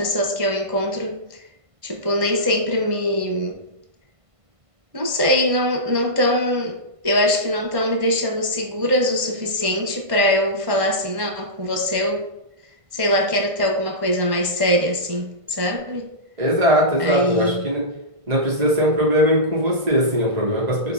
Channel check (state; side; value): late; left; 1.5 ms